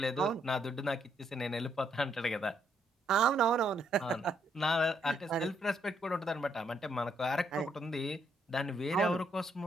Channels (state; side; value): normal; both; correlation 0.73